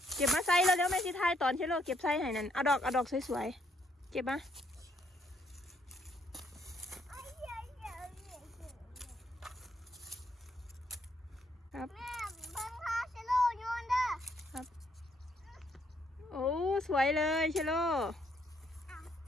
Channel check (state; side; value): normal; both; correlation 0.71